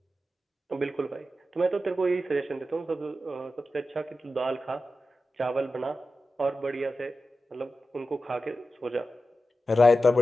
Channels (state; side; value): normal; both; correlation 0.92